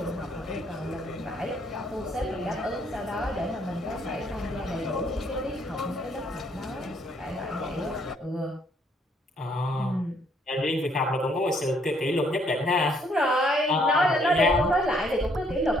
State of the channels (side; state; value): both; normal; correlation 0.67